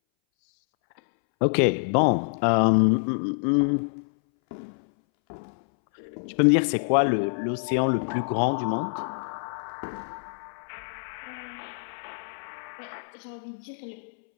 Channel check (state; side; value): silent; right; 61 dB below the other